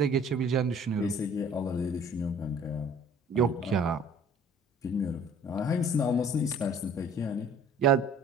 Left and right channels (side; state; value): both; normal; correlation 0.52